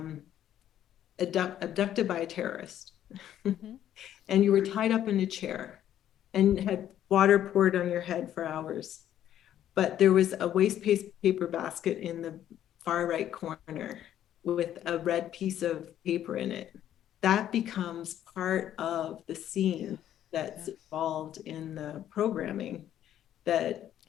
abducted by a terrorist and you were tied up in a chair and had water poured on your head for hours, but there was a waste paper basket in the far right corner with a red piece of paper in it. That becomes part of the scene that's involved in the programming that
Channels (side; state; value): right; quieter; 11.2 dB